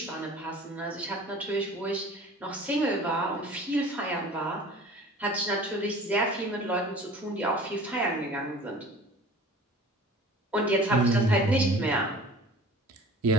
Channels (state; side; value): normal; both; correlation 0.45